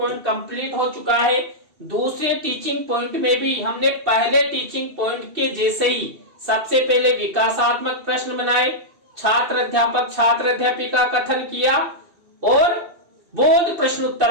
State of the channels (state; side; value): late; left; 2.7 ms